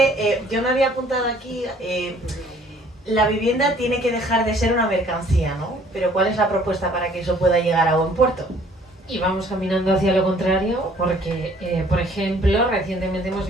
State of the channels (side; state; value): both; normal; correlation 0.58